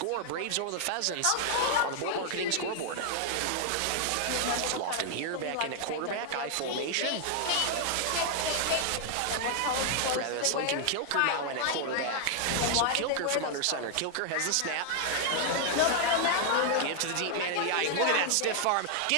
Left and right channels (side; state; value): both; different; correlation 0.00